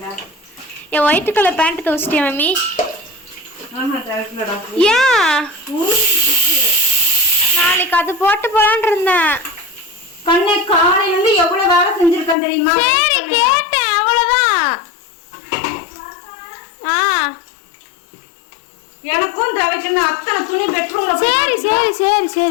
என் ஒயிட் கலர் பேண்ட் துவச்சிட்டியா மம்மி? ஏன் நாளைக்கு அது போட்டு போலான்னு இருந்தேன். கண்ணே காலையில இருந்து எவ்வளவு வேலை செஞ்சிருக்கேன் தெரியுமா? சரி கேட்டேன், அவ்வளவுதான். எனக்கும் துவைக்கணும். அத்தனை துணி பெட்ரூம்ல. சரி சரி சரி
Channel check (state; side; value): drops out; right; at 12.4 s